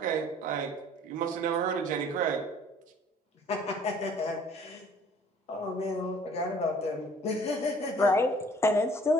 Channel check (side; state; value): both; normal; correlation 0.54